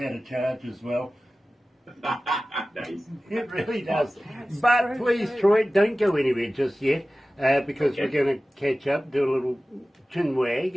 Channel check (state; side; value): normal; both; correlation 0.96